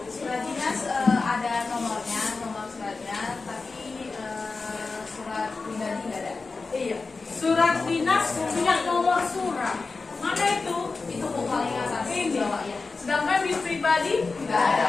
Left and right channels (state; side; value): quieter; right; 4.1 dB